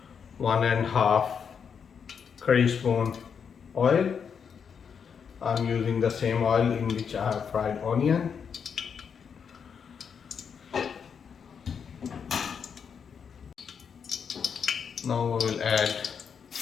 1.5 curry spoon oil. I'm using the same oil in which I have fried onion. Now we will add.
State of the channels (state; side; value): quieter; right; 6.8 dB